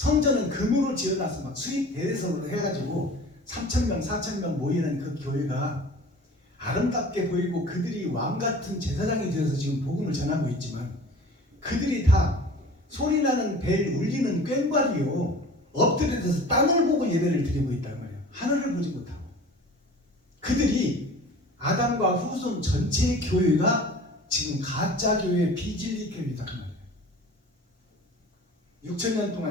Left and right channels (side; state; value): both; normal; correlation 0.42